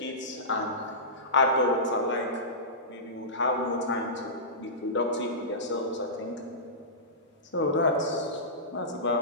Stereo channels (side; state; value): both; normal; correlation -0.19